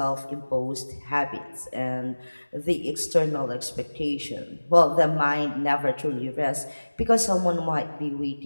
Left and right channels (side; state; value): both; inverted; correlation -1.00